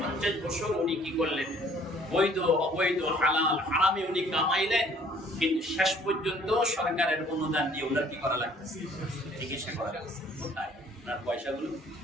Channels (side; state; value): both; normal; correlation 0.57